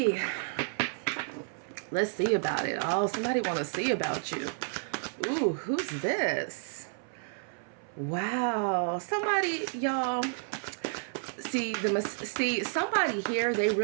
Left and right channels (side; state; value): left; silent; 57 dB below the other